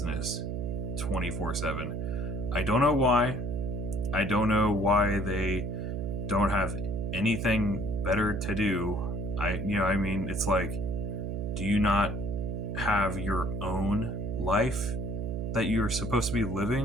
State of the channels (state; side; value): noise; right; hum, 3 dB below the sound